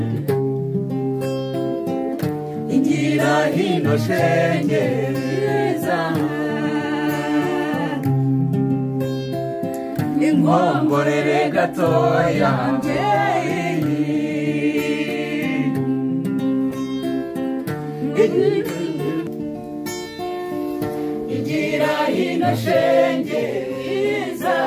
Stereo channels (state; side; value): identical; both; correlation 1.00